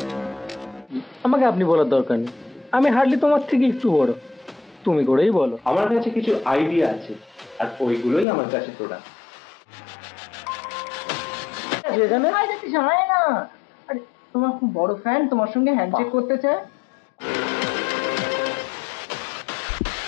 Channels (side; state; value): right; drops out; at 8.2 s